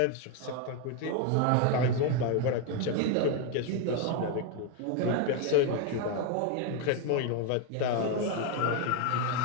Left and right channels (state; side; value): different; both; correlation 0.01